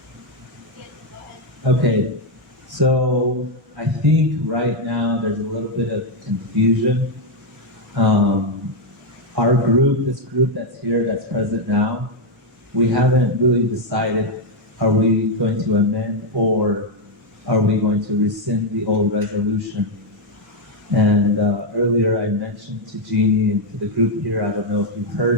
Okay, so I think right now there's a little bit of confusion. Our group, this group that's here, that's present now, we haven't really decided, are we going to amend or are we going to rescind the old resolution? And earlier I mentioned to Jeannie and to the group here, I don't know if you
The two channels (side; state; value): both; normal; correlation 0.02